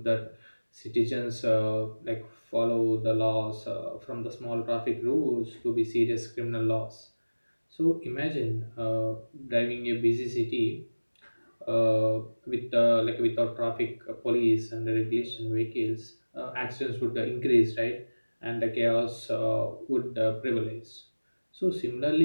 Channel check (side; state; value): both; inverted; correlation -1.00